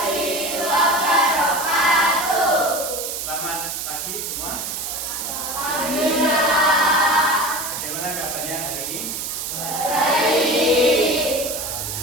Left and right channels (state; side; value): noise; right; hiss, 5 dB below the sound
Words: wabarakatuh. Selamat pagi semua. Alhamdulillah. Bagaimana kabarnya hari ini? Baik.